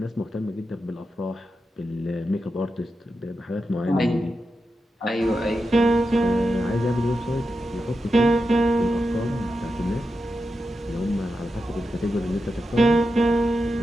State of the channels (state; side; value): normal; both; correlation 0.89